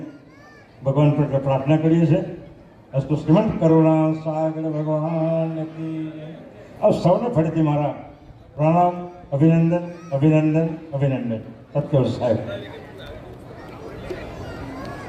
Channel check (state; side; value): identical; both; correlation 1.00